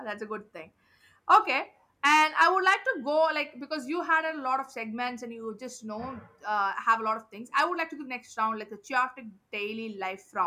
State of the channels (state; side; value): identical; both; correlation 1.00